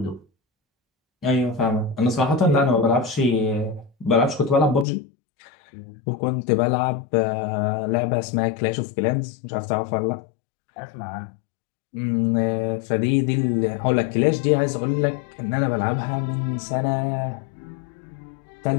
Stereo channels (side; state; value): right; drops out; at 4.9 s